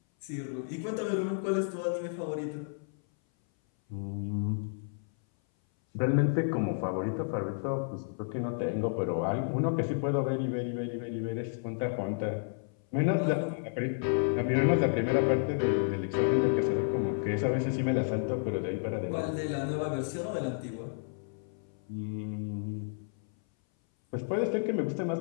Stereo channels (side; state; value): right; silent; 57 dB below the other